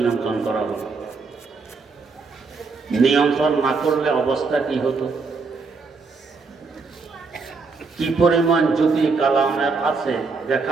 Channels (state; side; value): quieter; left; 4.4 dB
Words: করা হলো। নিয়ন্ত্রণ না করলে অবস্থা কি হতো? কি পরিমাণ জ্যোতি কালামের আছে